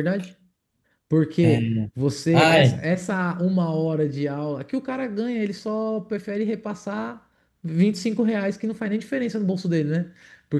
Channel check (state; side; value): identical; both; correlation 1.00